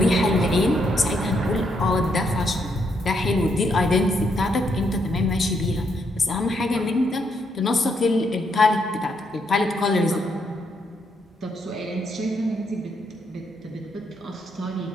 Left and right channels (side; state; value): both; normal; correlation 0.76